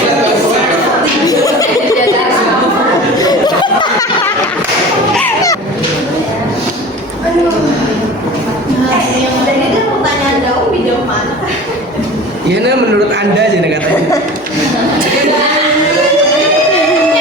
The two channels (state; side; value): normal; both; correlation 0.37